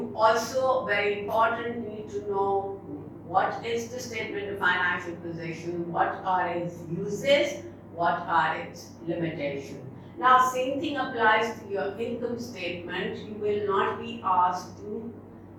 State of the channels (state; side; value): identical; both; correlation 1.00